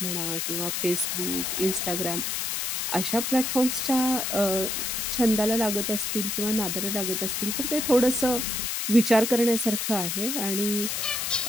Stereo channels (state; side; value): noise; left; hiss, 1 dB below the sound